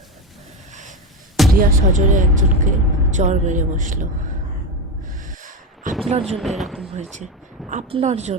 রিয়া সজোরে একজনকে চড় মেরে বসলো। আপনার জন্য এরকম হয়েছে, আপনার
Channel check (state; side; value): normal; both; correlation 0.16